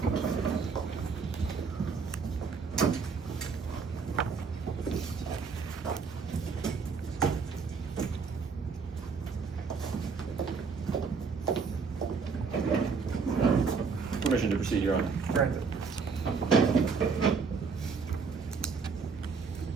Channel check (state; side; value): quieter; left; 5.2 dB